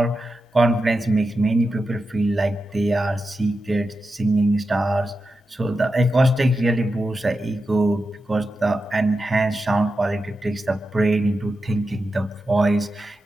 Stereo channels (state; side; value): normal; both; correlation 0.90